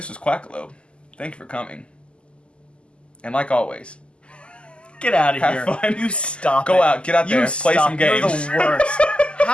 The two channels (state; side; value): late; right; 0.052 ms